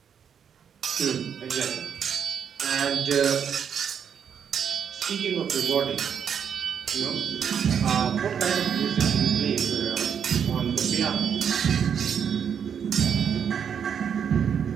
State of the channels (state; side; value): quieter; left; 7.8 dB